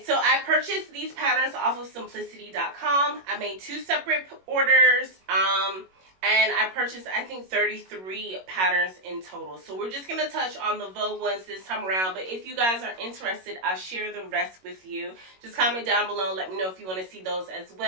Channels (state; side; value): late; left; 21 ms